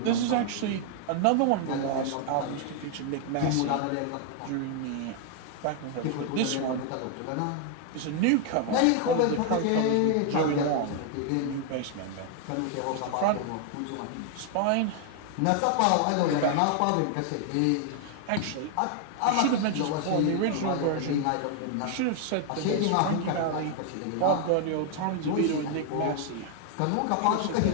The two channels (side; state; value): both; different; correlation 0.00